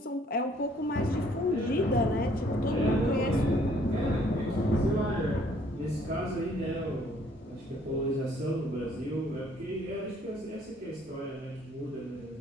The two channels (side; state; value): both; normal; correlation 0.62